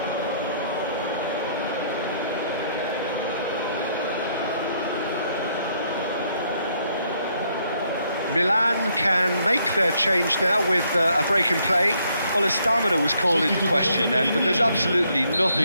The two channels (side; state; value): both; inverted; correlation -0.70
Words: Milan can make their change now with a break in play. Well, his stamina was called into question then, but there's absolutely